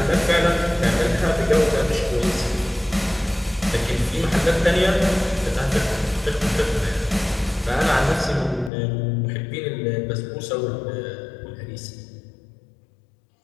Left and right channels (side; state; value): right; drops out; at 8.7 s